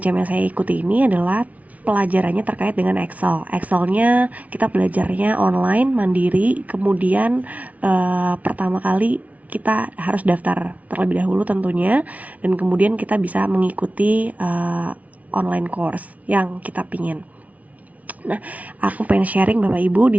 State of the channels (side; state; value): left; late; 0.070 ms